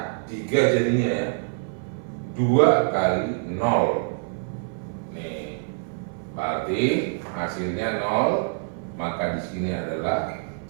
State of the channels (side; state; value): left; silent; 59 dB below the other